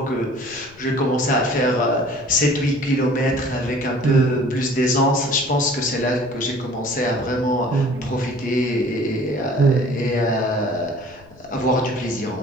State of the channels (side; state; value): left; noise; rumble, 25 dB below the sound